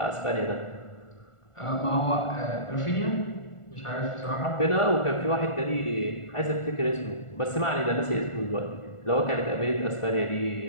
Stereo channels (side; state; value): right; late; 1.4 ms